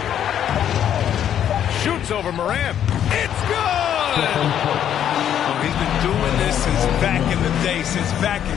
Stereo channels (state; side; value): quieter; right; 9.9 dB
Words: Shoots over Morant. It's good! Oh, he's been doing this since back in the day, since back in